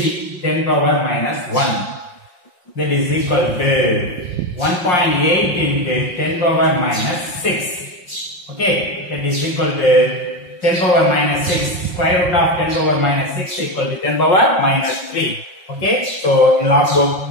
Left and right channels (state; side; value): late; right; 5.6 ms